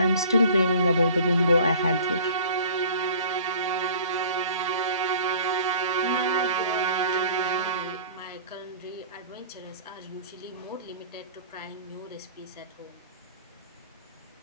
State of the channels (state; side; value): inverted; both; correlation -0.47